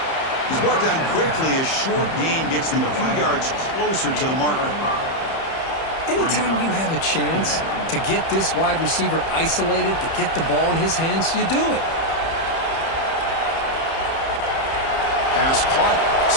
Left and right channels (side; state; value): right; late; 30 ms